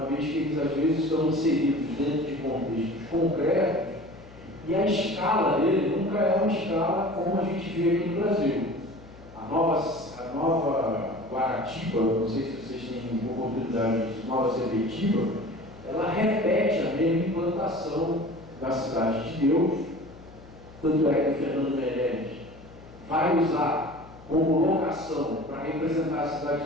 vez que eles às vezes estão inseridos dentro de contextos concretos e a escala dele nunca é uma escala como a gente vê aqui no Brasil. A nova Guaratiba, não sei se vocês têm oportunidade de nova Sepetiba, ela repete a mesma implantação da Cidade de Deus, tanto é que o Fernando Meirelles vai usar como locação para representar a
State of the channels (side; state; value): left; noise; hum, 20 dB below the sound